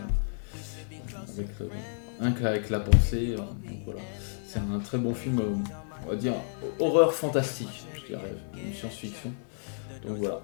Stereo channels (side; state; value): right; silent; 57 dB below the other